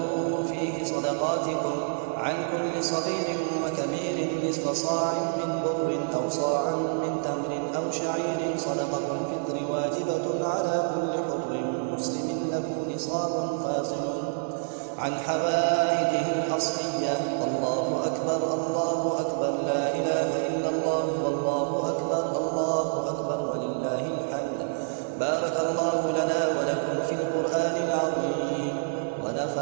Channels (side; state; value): left; silent; digital silence